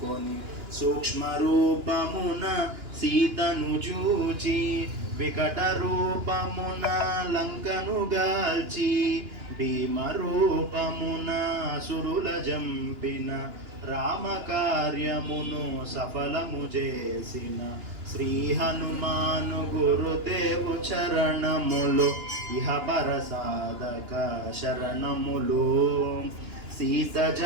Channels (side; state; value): left; late; 2.9 ms